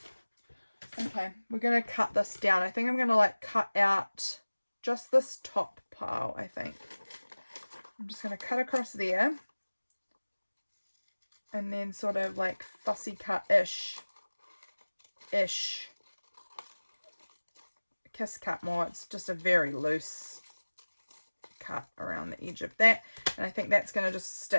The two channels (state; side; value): inverted; both; correlation -1.00